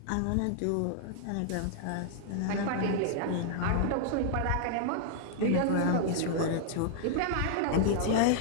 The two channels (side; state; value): both; different; correlation -0.01